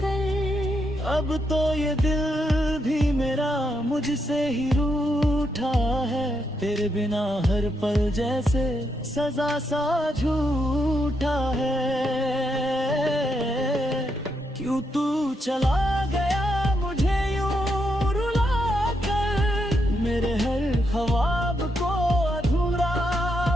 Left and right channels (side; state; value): both; normal; correlation 0.80